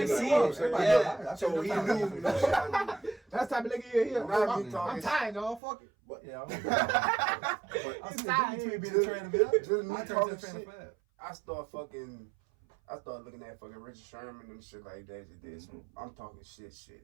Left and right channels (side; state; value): left; drops out; at 5.6 s